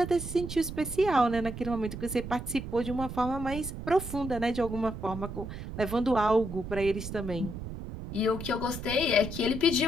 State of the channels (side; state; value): right; noise; rumble, 8 dB below the sound